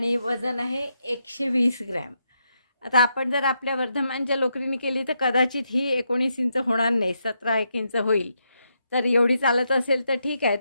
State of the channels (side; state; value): both; inverted; correlation -0.81